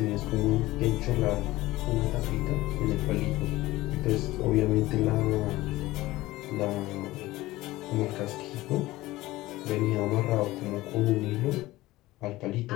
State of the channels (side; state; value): right; quieter; 18.0 dB